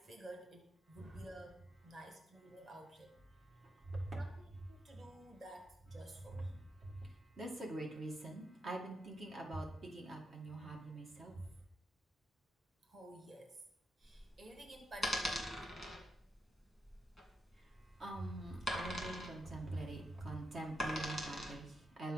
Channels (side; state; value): both; normal; correlation 0.83